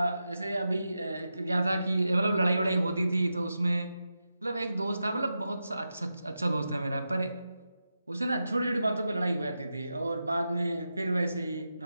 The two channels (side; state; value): both; inverted; correlation -0.89